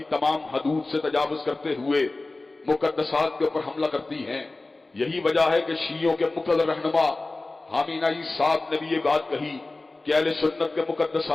تمام حدود سے تجاوز کرتے ہوئے مقدسات کے اوپر حملہ کرتی ہیں. یہی وجہ ہے کہ شیعوں کے مقتدر رہنما حامینہ صاحب نے بھی یہ بات کہی کہ اہل سنت کے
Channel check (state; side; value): quieter; right; 3.2 dB